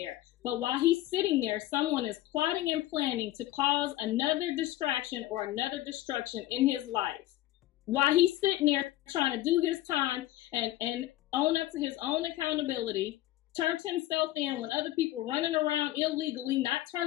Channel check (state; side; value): quieter; right; 15.5 dB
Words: But while he's sitting there, someone is plotting and planning to cause another distraction or another destruction in his life. while he's sitting there trying to do his time and own up to his own accountability, turned himself in when other people running around illegally, not